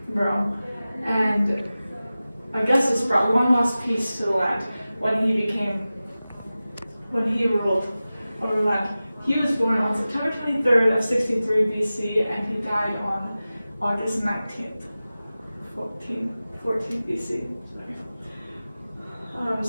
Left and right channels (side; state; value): both; inverted; correlation -0.96